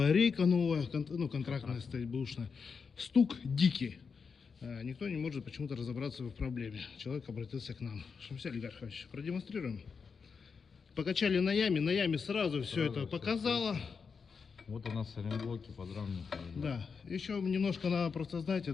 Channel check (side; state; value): right; quieter; 5.6 dB